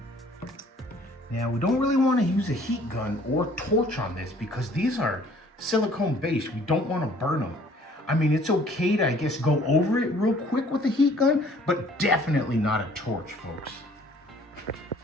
Now we don't really want to use a heat gun or torch on this because these are silicone based. We don't want to burn them. I mean, it's okay to, I guess, go over it real quick with a heat gun, but definitely not a torch, folks.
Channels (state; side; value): normal; both; correlation 0.56